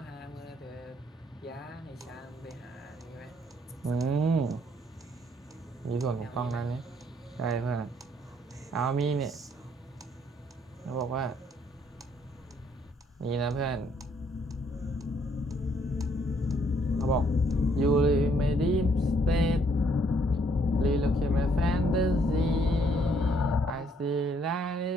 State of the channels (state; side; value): normal; both; correlation 0.67